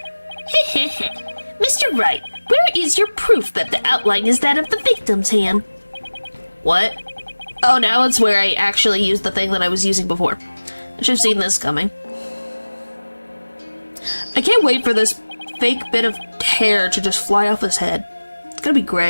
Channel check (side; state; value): both; inverted; correlation -1.00